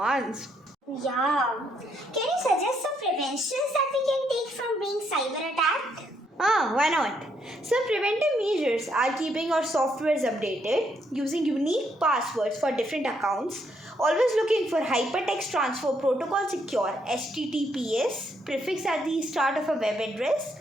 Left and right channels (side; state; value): both; normal; correlation 0.74